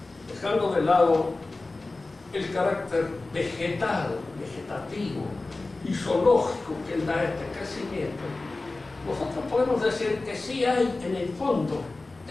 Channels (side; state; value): right; quieter; 3.3 dB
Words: dejando de lado el carácter vegetal, vegetativo y zoológico que da este crecimiento, nosotros podemos decir que sí hay en el fondo